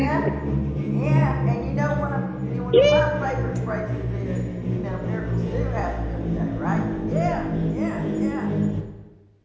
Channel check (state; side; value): identical; both; correlation 1.00